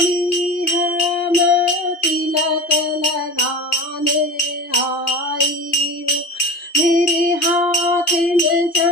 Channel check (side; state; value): right; late; 2.5 ms